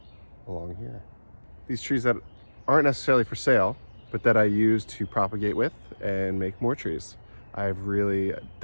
along here. These trees that aren't necessarily for sale, but that I use to propagate with and make more trees. I've really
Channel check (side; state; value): both; inverted; correlation -1.00